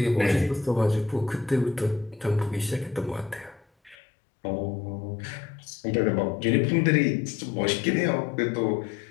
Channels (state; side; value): drops out; right; at 4.0 s